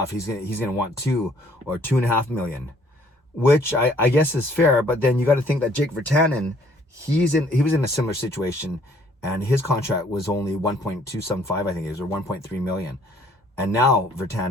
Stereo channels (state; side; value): normal; both; correlation 0.61